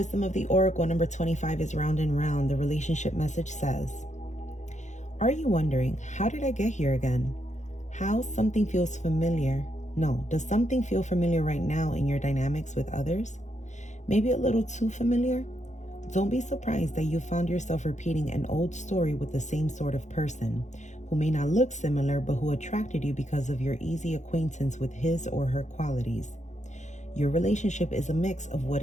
of the oracle, number 25 is round and round. The relationship message says, are you wondering, how did I get here again? How something feels familiar? No, does something feel familiar right now in your dynamics with others? Maybe a little too familiar? Don't be surprised that you found yourself repeating an old story with the same sort of person, who may not look similar, but who attracted you because of your easy acquaintance with his or her qualities. Your relationship is a mix of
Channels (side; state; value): right; late; 0.34 ms